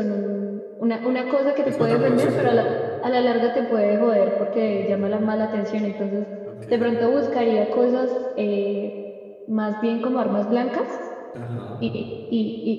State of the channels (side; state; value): both; identical; correlation 1.00